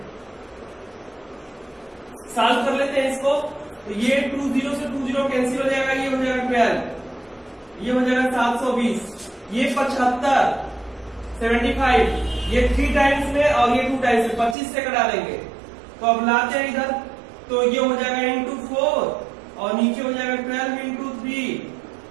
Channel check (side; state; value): left; drops out; at 14.6 s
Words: सॉल्व कर लेते हैं इसको। तो ये 20 से 20 कैंसिल हो जाएगा, ये हो जाएगा 12, ये हो जाएगा 720, ये 75, 75, ये 3 टाइम्स में और ये 2 टाइम्स में 25 से कटा देंगे। तो अब लाते हैं इधर, तो ये हो जाएगा इंटू 4 और नीचे हो जाएगा 12 इंटू 3,